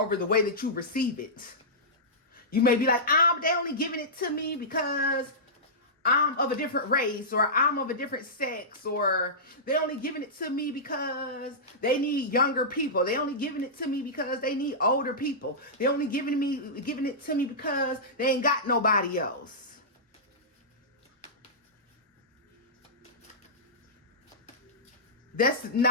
the way that you receive it. You may be like, they only giving it to me because I'm of a different race, or I'm of a different sex, or they only giving it to me because they need younger people. They only giving it to me because they need older people. They only giving it to me because they ain't got nobody else. That's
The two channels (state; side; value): normal; both; correlation -0.15